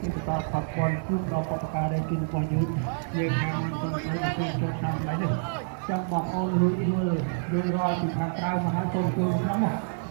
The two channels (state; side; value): silent; left; 60 dB below the other